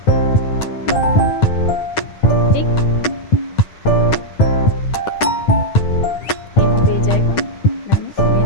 ठीक, यहाँ पे जाएगा लाइनिंग,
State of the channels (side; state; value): right; late; 9.7 ms